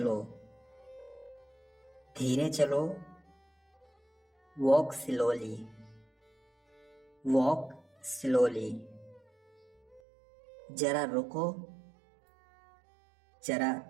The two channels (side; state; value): left; drops out; at 10.0 s